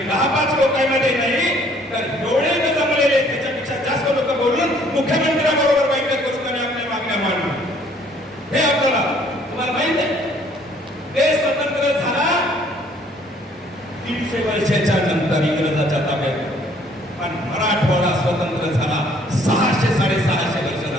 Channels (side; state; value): both; normal; correlation 0.60